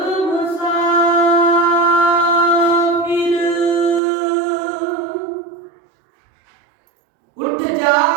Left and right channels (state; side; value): drops out; left; at 4.0 s